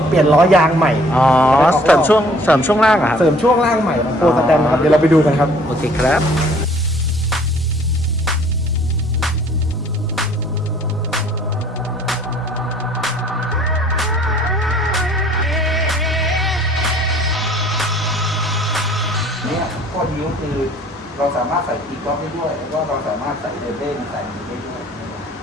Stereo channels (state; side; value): normal; both; correlation 0.56